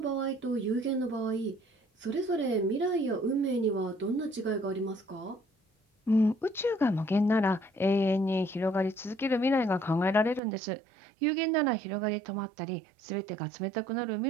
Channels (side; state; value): left; drops out; at 10.4 s